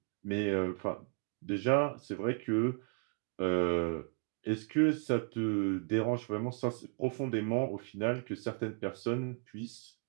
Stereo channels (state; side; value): quieter; left; 38.5 dB